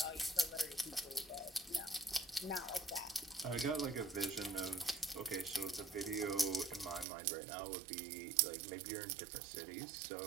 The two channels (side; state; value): left; drops out; at 7.1 s